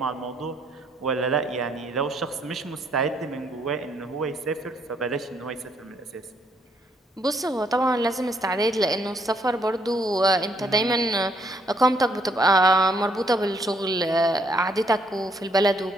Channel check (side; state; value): both; normal; correlation 0.70